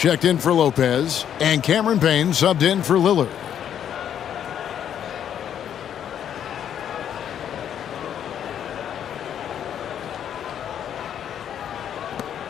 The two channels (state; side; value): quieter; right; 9.4 dB